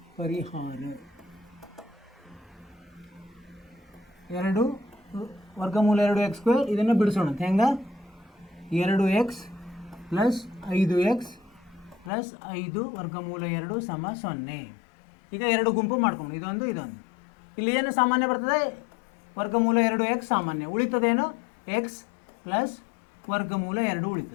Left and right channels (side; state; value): right; drops out; at 12.1 s